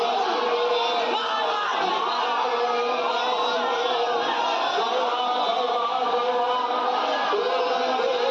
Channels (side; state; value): both; identical; correlation 1.00